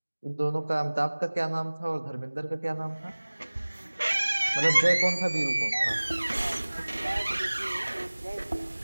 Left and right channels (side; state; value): both; inverted; correlation -1.00